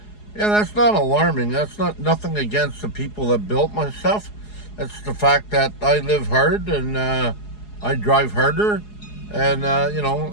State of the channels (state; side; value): late; right; 4.8 ms